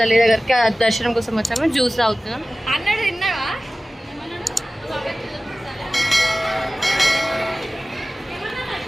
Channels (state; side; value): normal; both; correlation 0.97